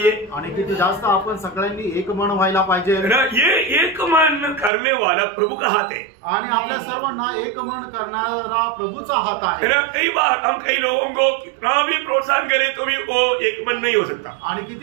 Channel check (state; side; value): drops out; left; at 4.7 s